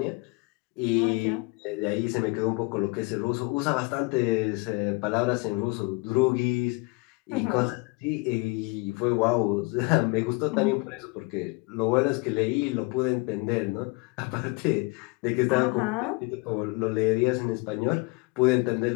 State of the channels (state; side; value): quieter; right; 27.7 dB